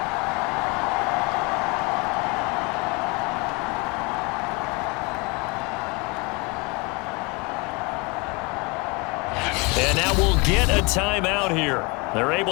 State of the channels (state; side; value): quieter; right; 28.0 dB